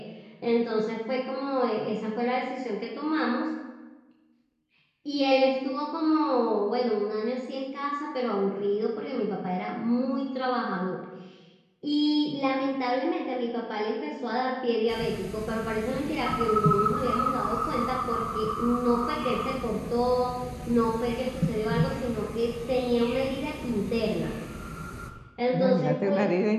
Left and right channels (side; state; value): both; identical; correlation 1.00